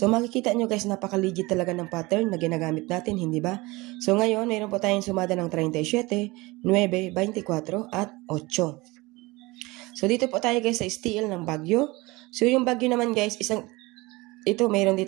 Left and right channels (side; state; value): left; quieter; 22.5 dB